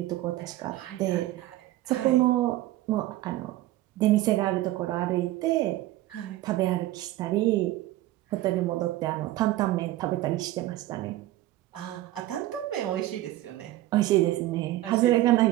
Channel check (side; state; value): left; quieter; 15.7 dB